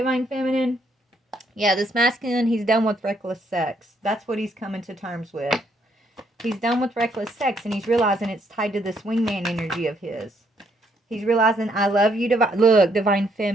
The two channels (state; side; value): normal; both; correlation 0.71